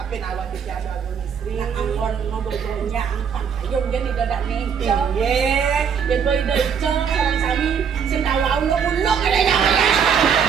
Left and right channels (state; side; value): quieter; left; 7.1 dB